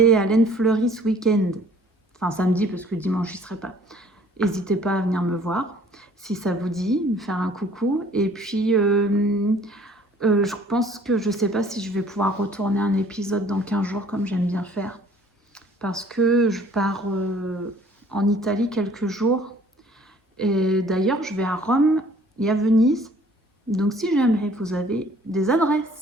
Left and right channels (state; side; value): normal; both; correlation 0.55